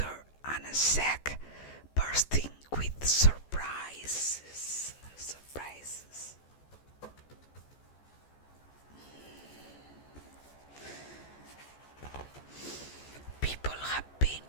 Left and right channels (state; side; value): late; right; 14 ms